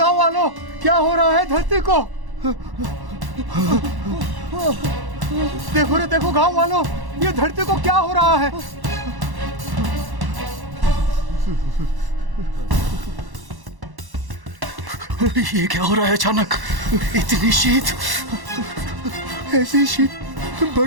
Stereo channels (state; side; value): late; left; 1.1 ms